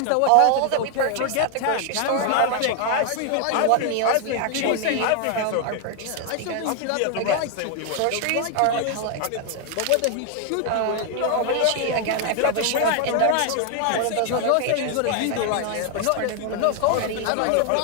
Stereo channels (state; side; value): different; both; correlation 0.00